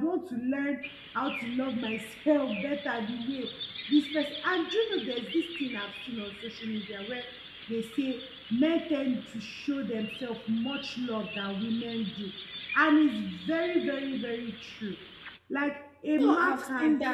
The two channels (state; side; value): identical; both; correlation 1.00